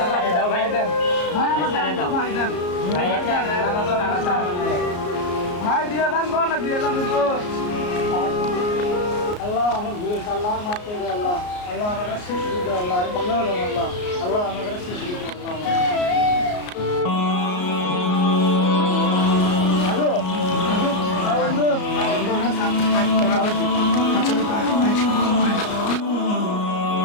ভাই দেন, ভাই আমার ছেড়ে দাও। ভাই দেন। ভাই দিয়ে দান কর না দিয়ে দান হুজুর আল্লাহ আমার ভুল হয়েছে, আল্লাহ মাফ করে দাও আল্লাহ। আল্লাহ আমার কাছে শিশু দিও আল্লাহ, আমি বাংলা হলাম আল্লাহ। আল্লাহ আমার কাছে শিশু দিও আল্লাহ। হ্যালো বন্ধু,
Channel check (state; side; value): late; right; 33 ms